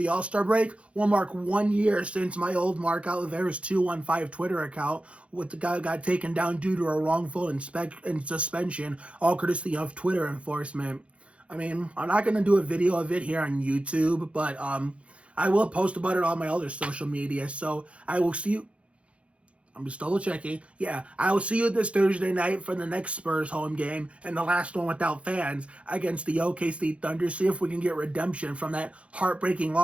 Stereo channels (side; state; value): left; late; 0.062 ms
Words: All-Star break. We'll mark 1 year since my old Mark Oliveira's 215 Twitter account with the guy got taken down due to a wrongful suspension, all courtesy of Twitter enforcement. I mean, I'm not going to do a video of it here on YouTube, but I will post about it on my other social media. So I will see you. I'm just double checking. Yeah, I will see you this Thursday night for the next Spurs home game and the last one without fans against the OKC Thunder. See if we can get redemption from that heartbreaking